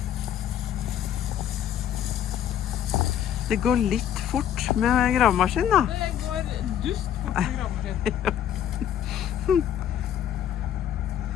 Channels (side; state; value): right; quieter; 10.3 dB